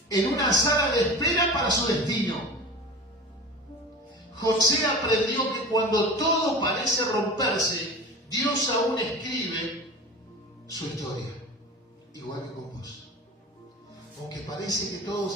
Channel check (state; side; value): normal; both; correlation 0.34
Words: en una sala de espera para su destino. José aprendió que cuando todo parece romperse, Dios aún escribe su historia, igual que con vos. Aunque parece que todo